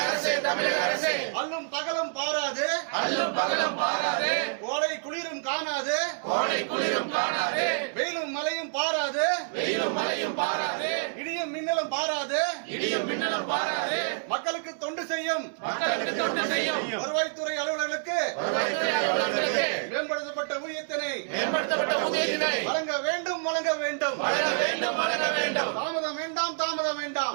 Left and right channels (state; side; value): silent; left; digital silence